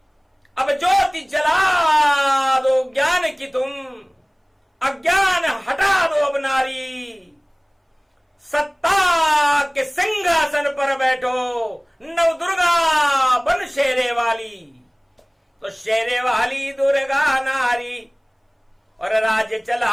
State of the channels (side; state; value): both; identical; correlation 1.00